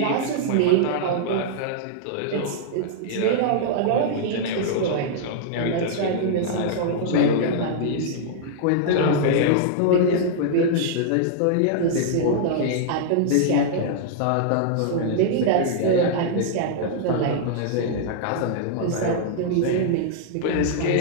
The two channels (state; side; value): different; both; correlation -0.01